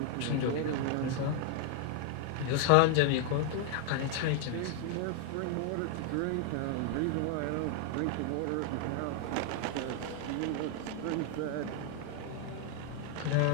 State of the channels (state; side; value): different; both; correlation 0.00